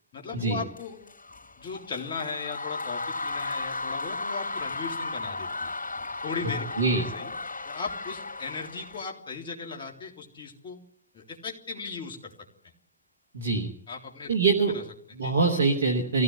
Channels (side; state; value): both; inverted; correlation -0.42